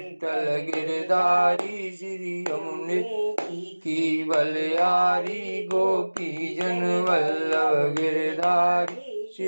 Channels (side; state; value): both; inverted; correlation -1.00